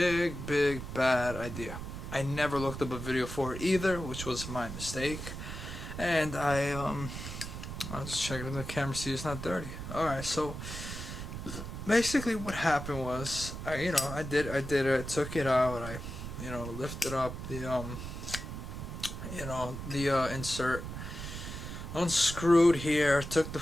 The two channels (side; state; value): right; noise; rumble, 8 dB below the sound